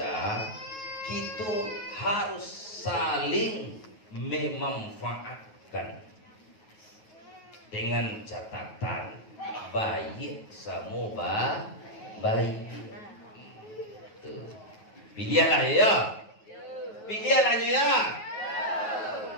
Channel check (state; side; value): late; right; 9.3 ms